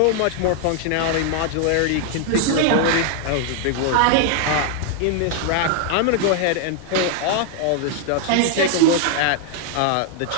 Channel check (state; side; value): different; both; correlation 0.00